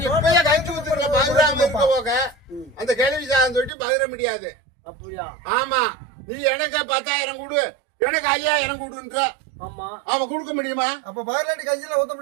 இப்பயே கஞ்சி ஊத்துறதுல பகிராம இருக்க போக அந்த கேள்வி சாதம் தொட்டி பகிர முடியாது. அப்படியா? ஆமா நீ எனக்கு 10,000 கொடு எனக்கு 5,000 கொடுன்ற அவ கொடுக்க முடியுமா? அப்ப பகிர்லாண்டி கஞ்சில ஊத்த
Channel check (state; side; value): drops out; left; at 3.7 s